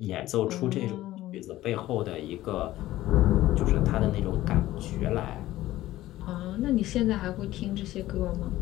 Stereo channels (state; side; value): quieter; right; 15.6 dB